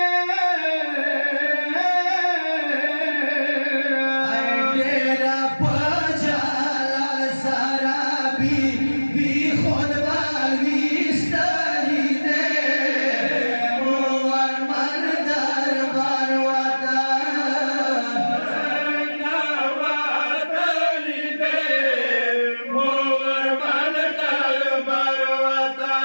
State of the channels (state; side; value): inverted; both; correlation -1.00